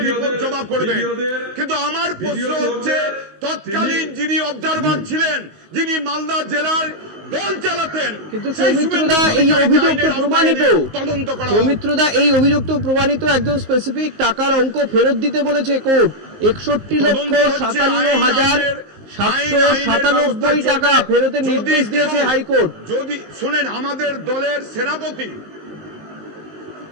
রিপোর্ট জমা করবে। কিন্তু আমার প্রশ্ন হচ্ছে, তৎকালীন যিনি অবজারভার ছিলেন, যিনি মালদা জেলার দল চালাতেন, কিন্তু সৌমিত্রদা এই অভিযোগ তো প্রমাণিত, সৌমিত্রদা এই অভিযোগ তো প্রমাণিত, একজন স্পেসিফিক টাকার অঙ্ক ফেরত দিতে বলেছে কোর্ট, 61,57,797 টাকা ফেরতের নির্দেশ দিয়েছে হাইকোর্ট। যদি শুনেন, আমাদের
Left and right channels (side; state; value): left; late; 19 ms